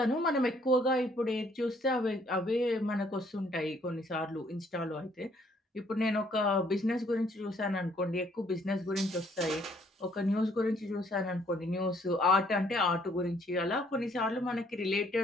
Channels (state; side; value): normal; both; correlation 0.65